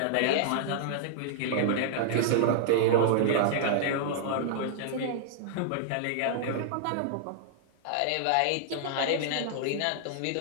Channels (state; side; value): different; both; correlation -0.01